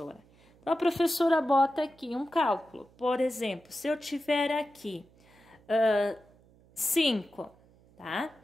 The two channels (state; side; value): noise; right; hum, 29 dB below the sound